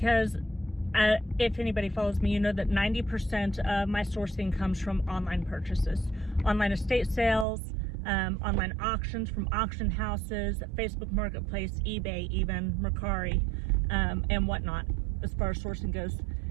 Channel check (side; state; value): left; drops out; at 7.5 s